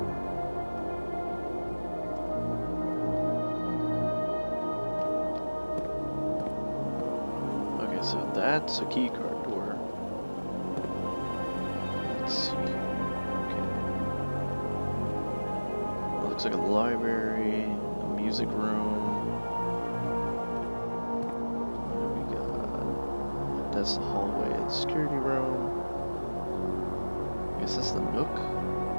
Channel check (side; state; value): both; inverted; correlation -1.00